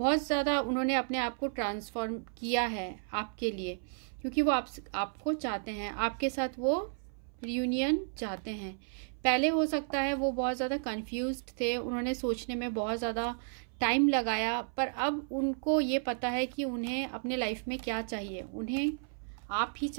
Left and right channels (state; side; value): silent; left; 56 dB below the other